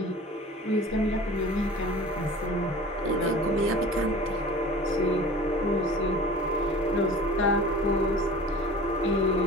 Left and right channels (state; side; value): normal; both; correlation 0.41